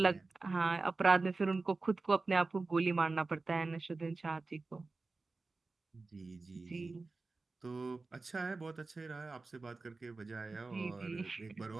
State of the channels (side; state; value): left; quieter; 3.7 dB